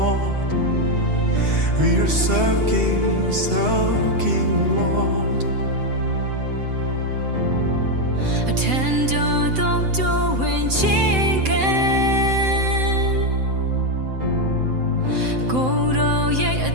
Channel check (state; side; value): late; left; 7.8 ms